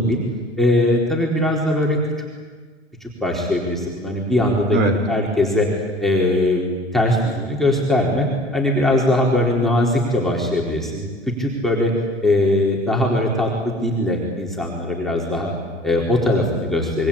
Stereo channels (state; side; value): normal; both; correlation 0.48